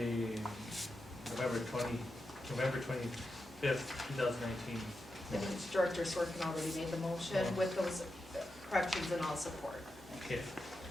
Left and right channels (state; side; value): normal; both; correlation 0.88